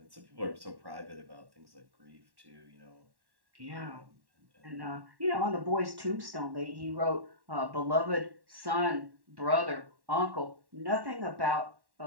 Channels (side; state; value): left; late; 1.1 ms